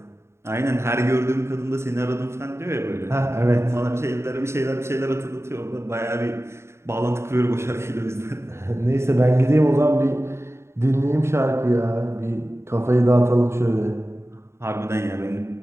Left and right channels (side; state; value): left; late; 0.13 ms